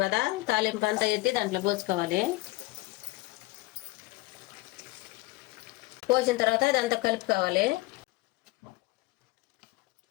కదా, తాలింపు అంతా ఎత్తి దాంట్లో పోసుకోవాలి. పోసిన తర్వాత ఇదంతా కలుపుకోవాలి.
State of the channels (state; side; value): quieter; right; 20.9 dB